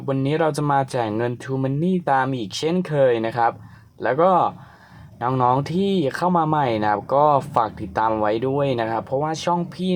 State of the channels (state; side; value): identical; both; correlation 1.00